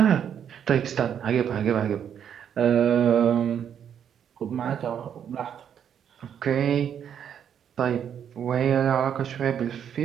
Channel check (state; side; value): quieter; left; 8.7 dB